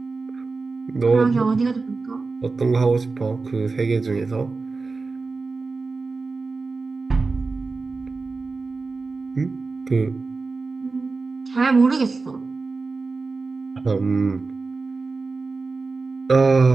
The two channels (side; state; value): left; quieter; 4.0 dB